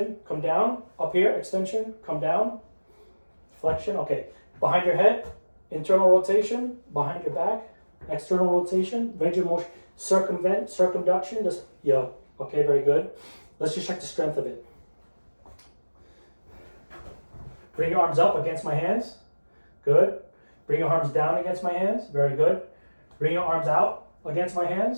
come down, up here, extension, come down, flexion, okay. Behind your head, internal rotation, behind your back, external rotation, range of motion, circumduction, just, yeah, okay, very good. Let's just check the strength of it. Bring your arms up against my hands, good. Bring your arms down against my hands, very good. Bring your arms out against my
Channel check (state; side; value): inverted; both; correlation -1.00